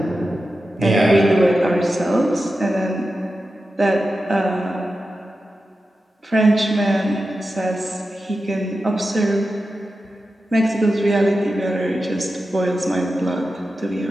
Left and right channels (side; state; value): both; normal; correlation 0.92